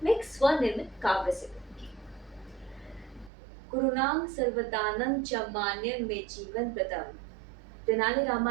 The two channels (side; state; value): left; drops out; at 3.3 s